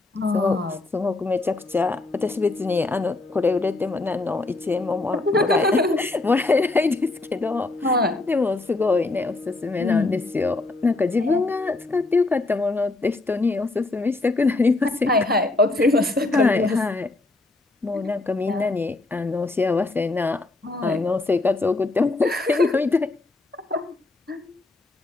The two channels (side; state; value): right; quieter; 3.1 dB